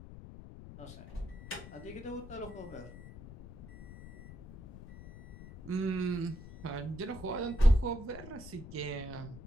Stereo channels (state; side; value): noise; left; rumble, 15 dB below the sound